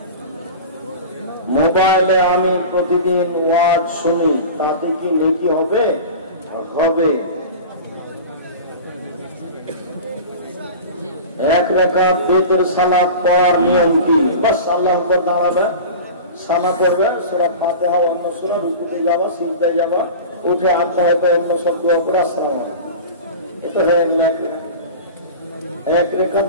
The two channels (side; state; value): both; inverted; correlation -0.33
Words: মোবাইলে আমি প্রতিদিন ওয়াজ শুনি, তাতে কি নেকি হবে? হবে। এক রাকাত বেতের সালাত পড়ার নিয়ম কি? বাস আল্লাহু আকবার দাঁড়াবে, সানা করবে, সূরা ফাতিহা অন্য সূরা, রুকুতে যাবা, সিজদায় যাবা, উঠে আল্লাহ অন্য সব দোয়া করে আসসালামু আলাইকুম। এটা হয়ে এক রেখাত।